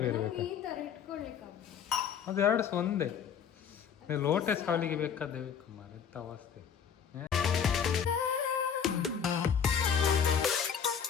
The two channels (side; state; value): right; quieter; 7.5 dB